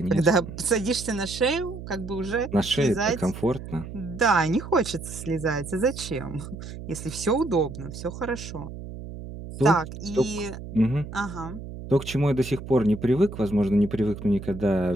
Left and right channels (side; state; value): right; noise; hum, 11 dB below the sound